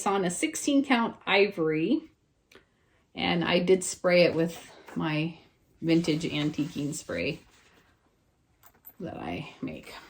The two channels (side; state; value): both; identical; correlation 1.00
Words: on a 16 count ivory. And I did spray it with my vintage antiquing spray that I make.